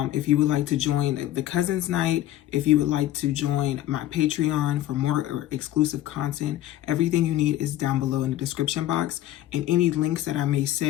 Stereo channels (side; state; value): right; quieter; 13.7 dB